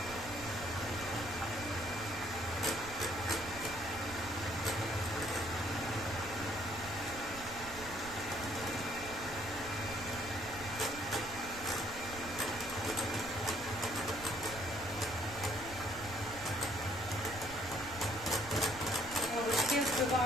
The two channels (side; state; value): right; noise; rumble, 14 dB below the sound